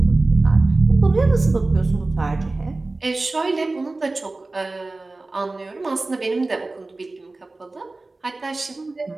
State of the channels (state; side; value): quieter; left; 3.2 dB